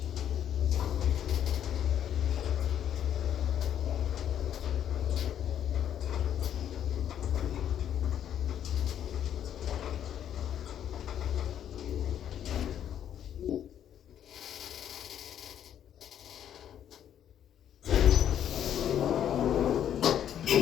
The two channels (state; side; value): quieter; right; 9.9 dB